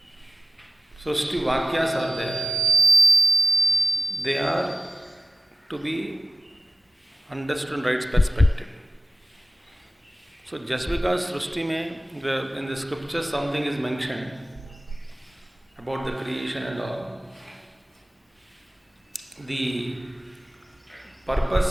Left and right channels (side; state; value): both; normal; correlation 0.94